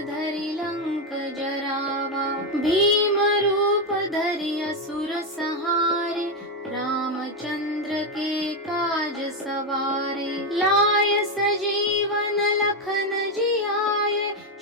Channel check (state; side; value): normal; both; correlation 0.07